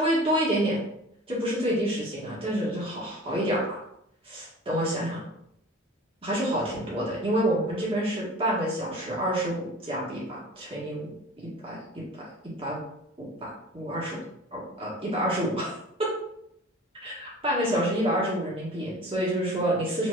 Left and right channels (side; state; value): both; normal; correlation 0.41